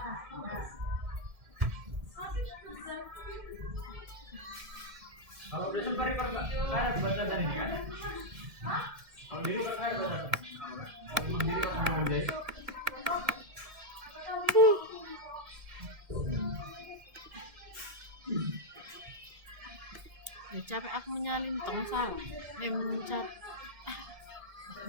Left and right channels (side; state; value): left; late; 1.8 ms